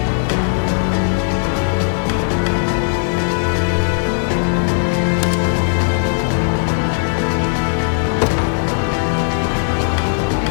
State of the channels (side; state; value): right; silent; 65 dB below the other